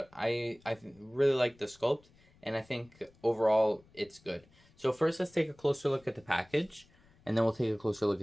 I really like the sculpt, and I think overall it's good. So first let's take a closer look at the package, and then we'll take a closer look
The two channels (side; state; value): left; noise; rumble, 29 dB below the sound